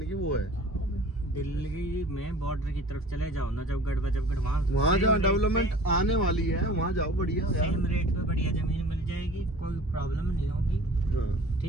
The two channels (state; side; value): normal; both; correlation 0.45